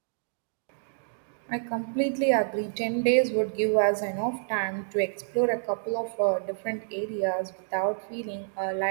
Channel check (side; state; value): left; silent; digital silence